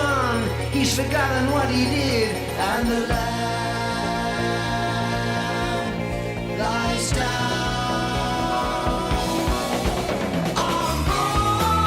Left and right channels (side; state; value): both; identical; correlation 1.00